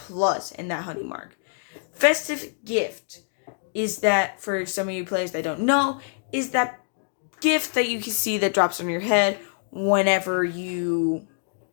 and that honey mark. Festive Gift is that, for some of you players that don't know, is that gift that you can see that drops on your head whenever you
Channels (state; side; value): silent; right; digital silence